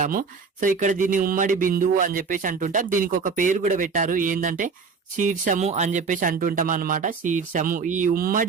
సో ఇక్కడ దీన్ని ఉమ్మడి బిందువు అని చెప్పేసి అంటుంటాం. దీనికి ఒక పేరు కూడా పెట్టారు, ఏంటంటే శీర్షము అని చెప్పేసి అంటుంటాం అనమాట. శీర్షము, ఈ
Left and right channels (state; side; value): quieter; left; 5.1 dB